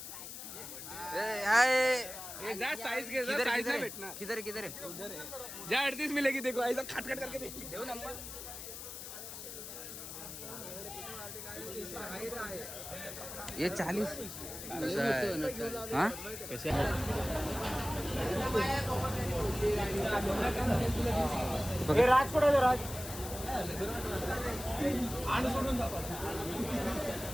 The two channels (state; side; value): noise; left; hiss, 10 dB below the sound